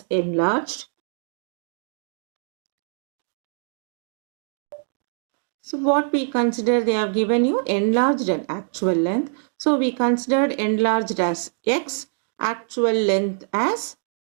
enlarged. So what we consider, they have given you enlarged and actual length. So we considered enlarged as X, actual length as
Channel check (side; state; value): left; silent; digital silence